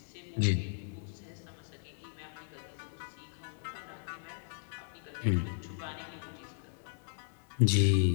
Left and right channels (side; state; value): right; silent; digital silence